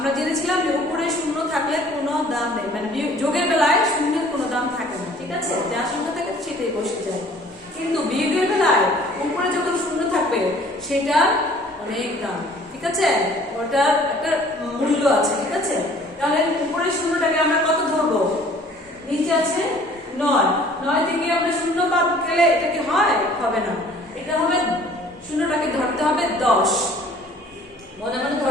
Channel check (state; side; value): normal; both; correlation 0.53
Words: জেনেছিলাম যে উপরে শূন্য থাকলে কোনো দাম নেই, মানে যোগের বেলায় শূন্যের কোনো দাম থাকে না, ঠিক আছে? যা সংখ্যা থাকে সেটাই বসে যায়। কিন্তু বিয়োগের বেলায় উপরে যখন শূন্য থাকবে সেটা অনেক দাম, ঠিক আছে? ওটার একটা মূল্য আছে, ঠিক আছে? তাহলে উপরের শূন্যটাকে আমরা কত ধরবো? নিচে আছে 9, 9 থেকে আমরা শূন্য বাদ গেলে এটা কি হয়? হবে না, এটা হবে শূন্যটাকে ধরতে হবে 10, মনে মনে